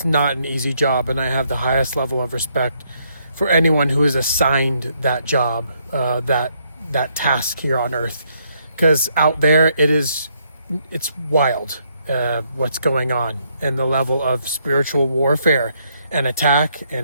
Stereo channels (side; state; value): both; inverted; correlation -0.73